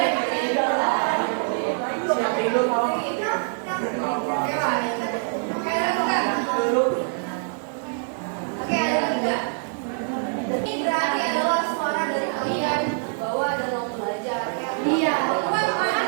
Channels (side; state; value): left; silent; 62 dB below the other